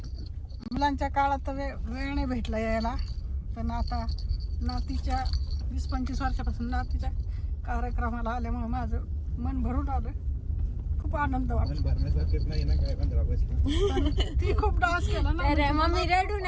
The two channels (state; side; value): identical; both; correlation 1.00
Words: मुलांच्या काळात तर वेळ नाही भेटला यायला, पण आता नातीच्या 20-25 वर्षापासून नातीच्या कार्यक्रमाला आल्यामुळे माझं मन भरून आलं. खूप आनंद वाटला. पण भरण्यासारखेच नाही ना काय 15 ऑगस्ट. ती खूप डान्स केला ना, तर मम्मी रडू